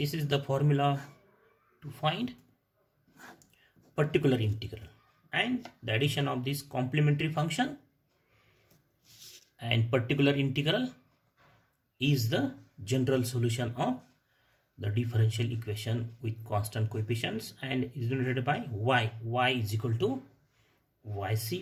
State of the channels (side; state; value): both; identical; correlation 1.00